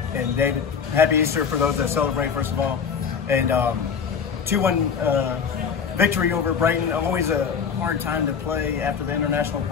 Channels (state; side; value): quieter; right; 6.6 dB